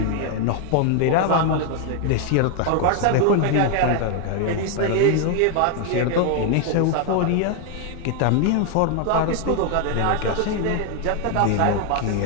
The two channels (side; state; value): both; different; correlation 0.01